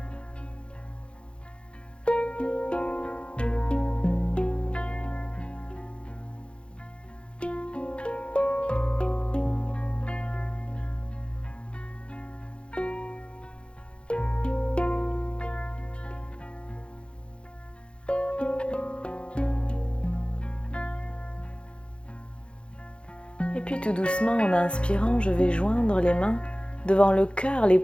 Et puis tout doucement, en inspirant, je vais joindre les mains devant le cœur, les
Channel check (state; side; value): late; right; 0.057 ms